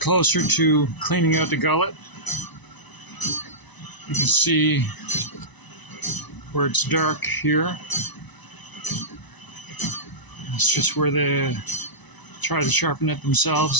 to cleaning out the gullet. You can see where it's dark here. It's just where they tried to sharpen it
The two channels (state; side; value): late; right; 1.0 ms